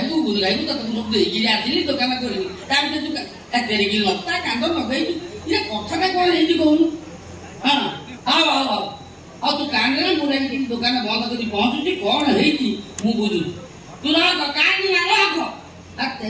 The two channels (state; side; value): identical; both; correlation 1.00